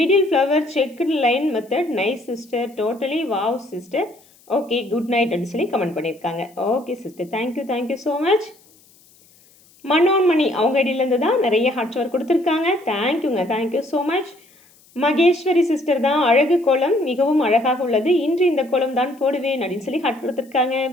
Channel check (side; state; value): left; noise; hiss, 29 dB below the sound